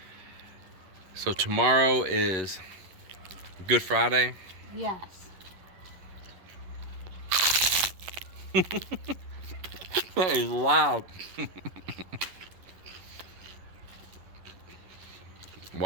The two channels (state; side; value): late; left; 11 ms